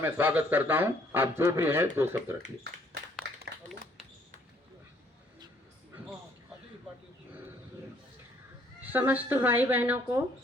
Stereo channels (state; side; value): normal; both; correlation 0.63